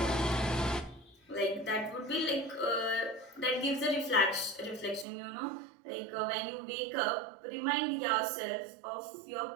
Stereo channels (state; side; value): drops out; left; at 5.1 s